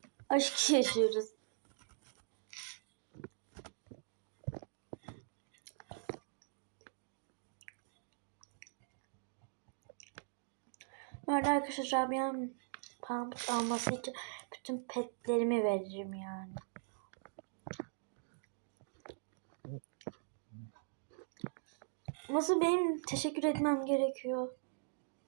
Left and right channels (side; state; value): left; silent; digital silence